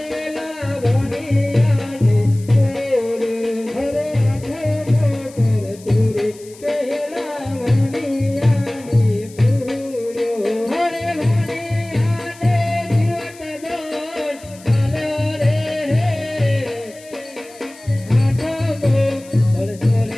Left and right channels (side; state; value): left; noise; hiss, 22 dB below the sound